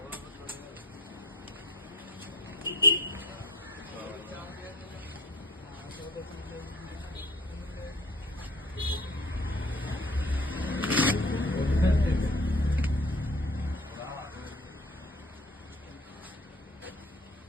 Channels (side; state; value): both; normal; correlation 0.47